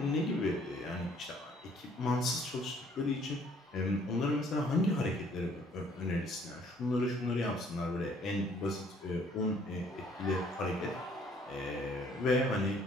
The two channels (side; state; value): both; normal; correlation 0.61